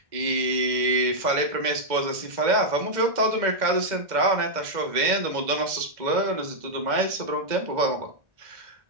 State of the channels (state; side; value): late; left; 2.0 ms